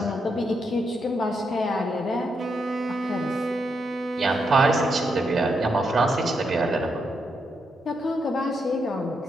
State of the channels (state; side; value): normal; both; correlation 0.81